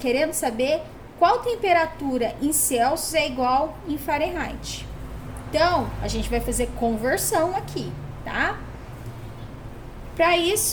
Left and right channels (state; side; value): identical; both; correlation 1.00